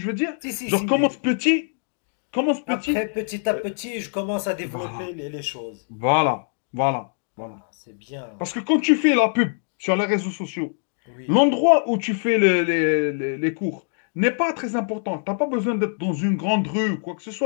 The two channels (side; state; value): right; silent; digital silence